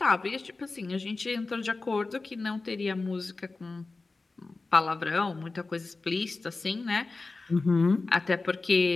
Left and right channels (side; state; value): right; quieter; 3.6 dB